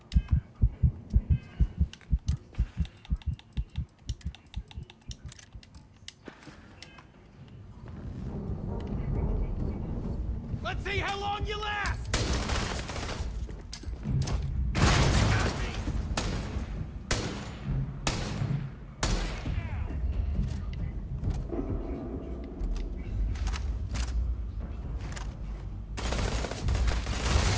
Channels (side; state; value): both; identical; correlation 1.00